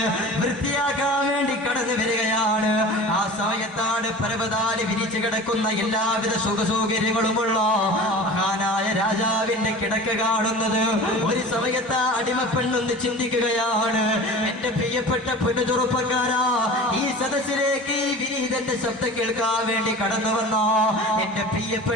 വൃത്തിയാക്കാൻ വേണ്ടി കടന്നു വരികയാണ്. ആ സമയത്താണ് പരവതാനി വിരിച്ചു കിടക്കുന്ന എല്ലാവിധ സുഖസൗകര്യങ്ങളുമുള്ള മഹാനായ രാജാവിന്റെ കിടക്ക കാണുന്നത്. ഒരു സമയത്ത് ആ അടിമപ്പെണ്ണൊന്ന് ചിന്തിക്കുകയാണ്, എന്റെ പ്രിയപ്പെട്ട പെണ്ണു ചെറുപ്പക്കാരാ, ഈ സദസ്സിലേക്ക് ഈ വിനീതന്റെ ശബ്ദം കേൾക്കാൻ വേണ്ടി കടന്നു വന്ന എന്റെ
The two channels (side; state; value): both; normal; correlation 0.37